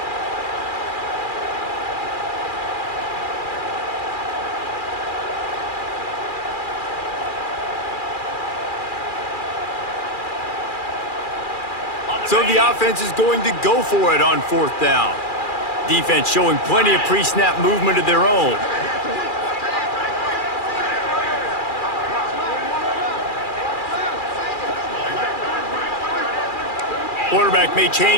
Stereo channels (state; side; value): late; right; 2.4 ms